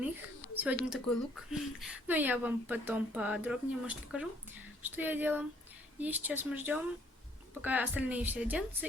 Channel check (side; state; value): both; normal; correlation 0.64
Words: Сегодня такой лук. Но я вам потом подробнее, может, покажу, что я делала. И сейчас мы ждем, пока остальные все оденутся,